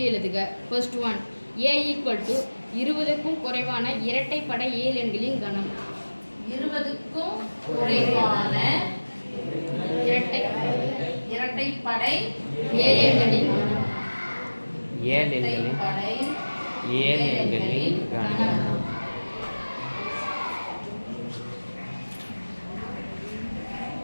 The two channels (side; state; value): both; inverted; correlation -1.00